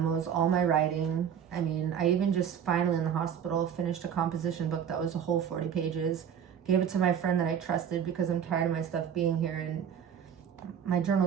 all my writing. I mean, I even just finally in the hospital finished a composition book that was a whole 40 pages. Gave it to my friend that I trusted because I'm tired of my stuff being here, and my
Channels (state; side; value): quieter; left; 8.3 dB